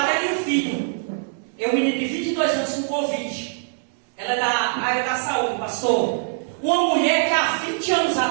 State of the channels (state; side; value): silent; left; 64 dB below the other